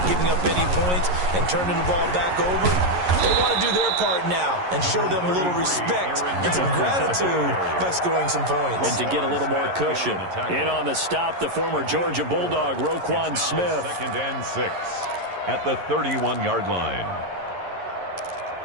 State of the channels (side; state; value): left; late; 11 ms